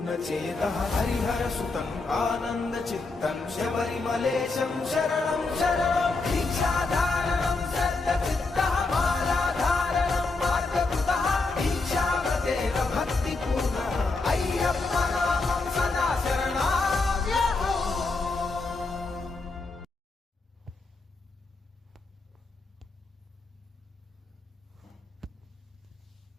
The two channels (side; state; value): right; quieter; 3.7 dB